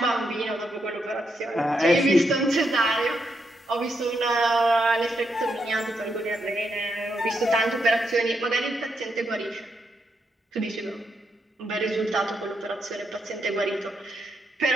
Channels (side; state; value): both; normal; correlation 0.81